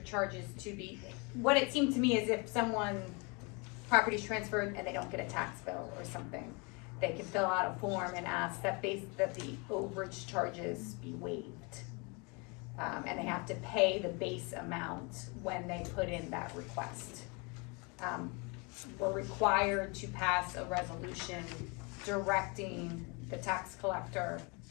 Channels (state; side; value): quieter; right; 30.6 dB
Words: to be, what it seemed to me is if someone property's transferred and they don't get a tax bill or something, they can fill out a form and ask that the overage charges be waived. And they have to pay the base amount when they put in that request. We're required to pass a resolution directing the tax collector